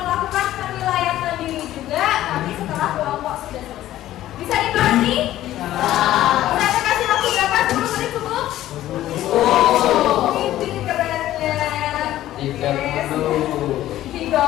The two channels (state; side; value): quieter; right; 13.9 dB